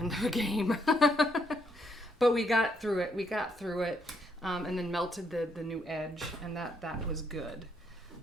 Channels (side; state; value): both; normal; correlation 0.74